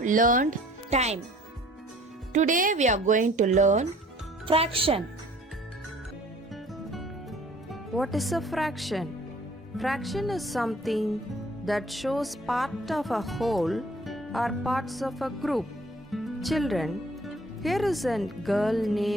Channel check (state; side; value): normal; both; correlation 0.54